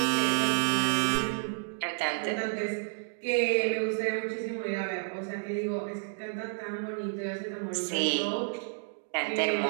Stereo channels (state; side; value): silent; left; digital silence